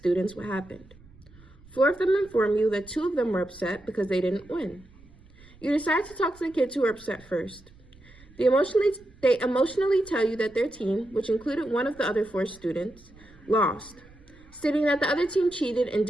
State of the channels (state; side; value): noise; right; rumble, 25 dB below the sound